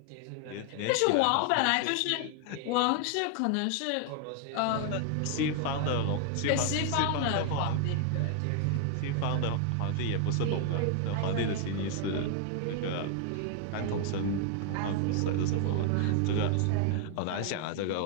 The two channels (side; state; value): both; different; correlation 0.00